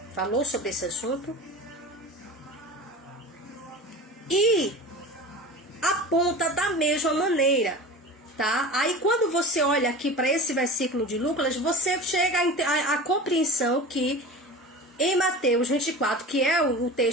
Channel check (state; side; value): normal; both; correlation 0.34